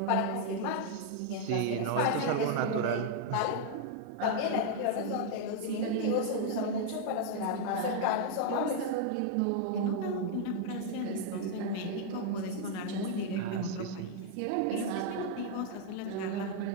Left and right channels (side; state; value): both; different; correlation 0.00